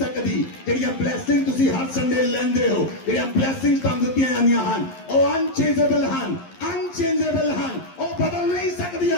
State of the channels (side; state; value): right; late; 11 ms